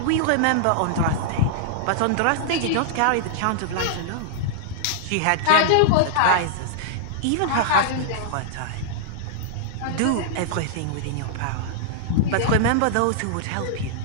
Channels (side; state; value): both; different; correlation -0.01